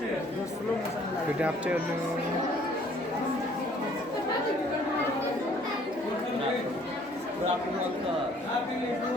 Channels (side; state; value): both; normal; correlation 0.58